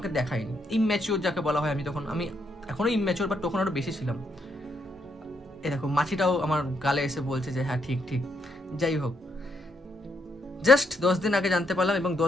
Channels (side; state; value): both; normal; correlation 0.76